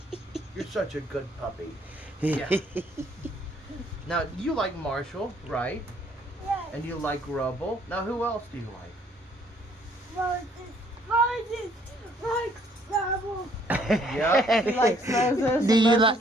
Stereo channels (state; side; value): normal; both; correlation 0.64